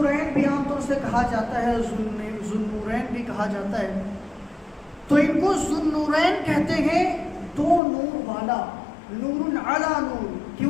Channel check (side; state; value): right; drops out; at 7.8 s